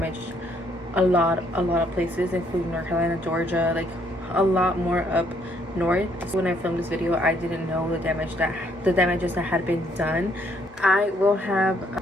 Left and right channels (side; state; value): both; normal; correlation 0.68